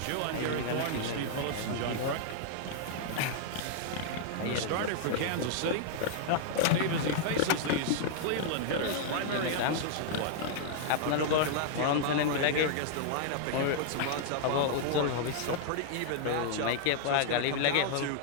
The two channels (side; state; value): both; different; correlation 0.00